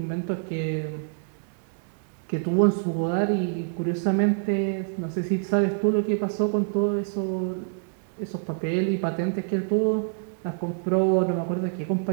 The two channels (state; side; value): silent; left; digital silence